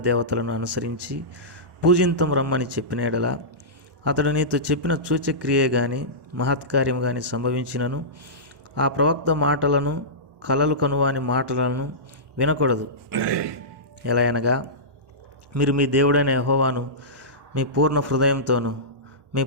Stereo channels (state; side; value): late; left; 1.1 ms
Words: దేవతలను అనుసరించి పూజింతం రమ్మని చెప్పిన ఎడల అతడు నీతో చెప్పిన సూచక్రియే గాని మహత్కార్యం గాని సంభవించినను ఆ ప్రవక్త మాటలను కలలు కనువాని మాటలను వినకూడదు. ఎలా అనగా, మీరు మీ దేవుడైన యెహోవాను మీ పూర్ణ హృదయంతోనూ మీ